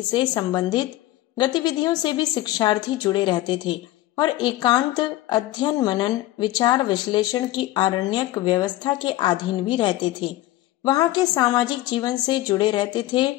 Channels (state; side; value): quieter; right; 16.1 dB